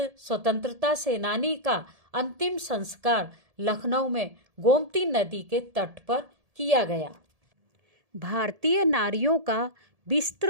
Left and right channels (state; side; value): late; left; 1.7 ms